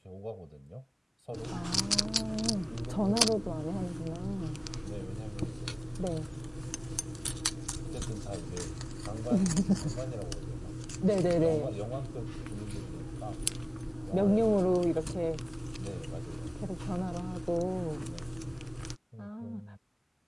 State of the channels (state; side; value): identical; both; correlation 1.00